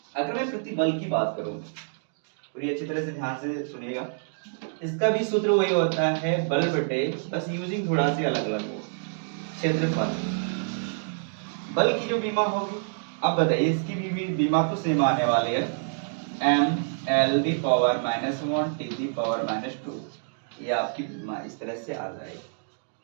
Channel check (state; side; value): silent; left; digital silence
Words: अगर मैं प्रतिबल की बात करूं पूरी अच्छी तरह से ध्यान से सुनिएगा, इसका भी सूत्र वही होता है बल बटे, बस यूजिंग थोड़ा सी अलग अलग हो, क्षेत्रफल। बल की जो बीमा होगी, अब बताइए इसकी भी बीमा तो सेम आने वाली है mL⁻⁻1 t⁻²। ये आपकी बीमा इस तरह से आ जाएगी।